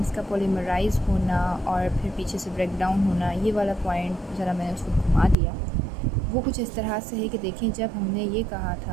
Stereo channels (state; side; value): drops out; left; at 5.4 s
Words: का पॉलीमराइज़ होना और फिर पीछे से ब्रेक डाउन होना, ये वाला पॉइंट ज़रा मैंने उसको घुमा दिया। वो कुछ इस तरह से है कि देखें, जब हमने ये कहा